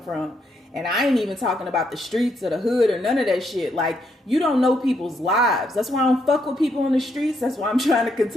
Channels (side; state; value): both; normal; correlation 0.76